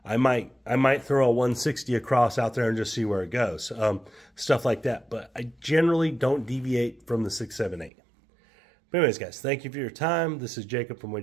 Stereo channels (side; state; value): left; drops out; at 7.9 s